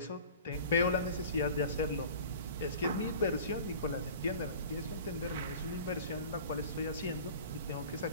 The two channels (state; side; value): inverted; both; correlation -0.42